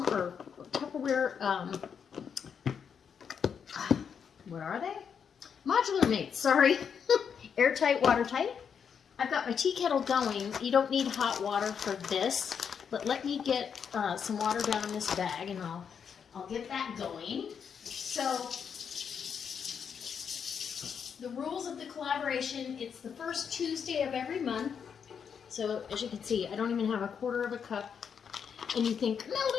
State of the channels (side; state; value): right; quieter; 7.1 dB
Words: what are they? Modular mates, sorry. Airtight, watertight. I've got my tea kettle going. You don't need hot water for this. But let me get some water down in this bag, and I'll get that going. So the rules of the collaboration, it's the first Tuesday of every month. So as you can see, I don't even have 1/4 cup. And you think, no,